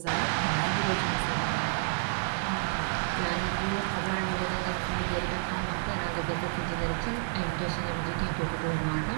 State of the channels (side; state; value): left; silent; digital silence